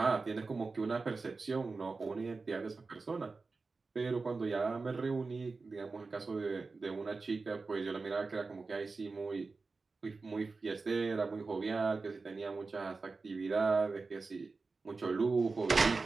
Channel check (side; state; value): left; quieter; 4.1 dB